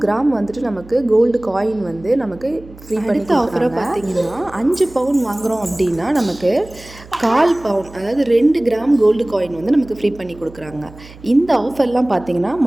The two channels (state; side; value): noise; right; hum, 20 dB below the sound